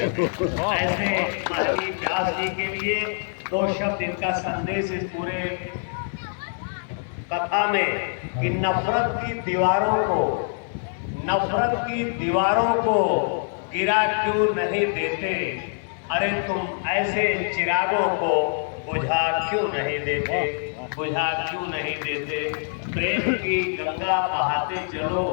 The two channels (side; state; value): right; silent; digital silence